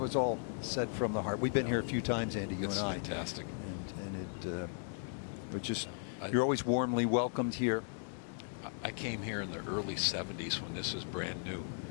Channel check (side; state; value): right; silent; digital silence